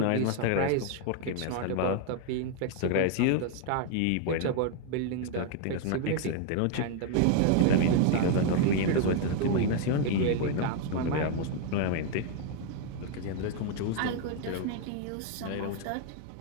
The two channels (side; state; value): both; different; correlation 0.00